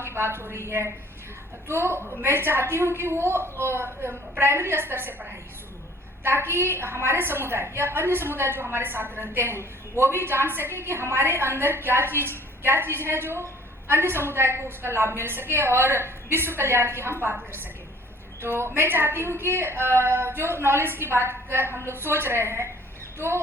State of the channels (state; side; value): normal; both; correlation 0.53